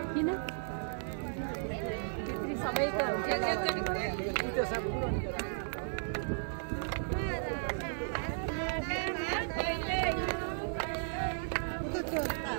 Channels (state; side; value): silent; left; 55 dB below the other